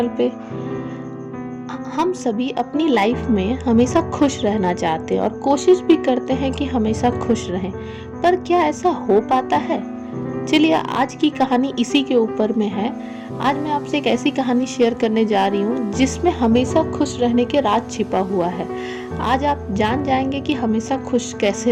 पे। हम सभी अपनी लाइफ में हमेशा खुश रहना चाहते हैं और कोशिश भी करते हैं कि हमेशा खुश रहें, पर क्या ऐसा हो पाता है? चलिए आज की कहानी इसी के ऊपर में है। आज मैं आपसे एक ऐसी कहानी शेयर करने जा रही हूँ जिसमें हमेशा खुश रहने के राज छिपा हुआ है। आज आप जान जाएंगे कि हमेशा खुश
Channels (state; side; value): identical; both; correlation 1.00